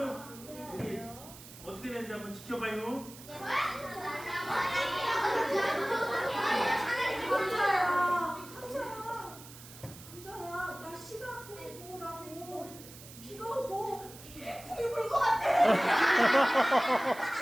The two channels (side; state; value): right; noise; hiss, 17 dB below the sound